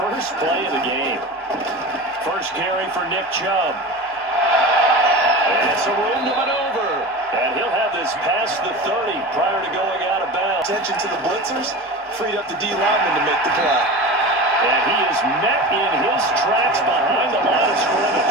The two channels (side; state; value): both; normal; correlation 0.30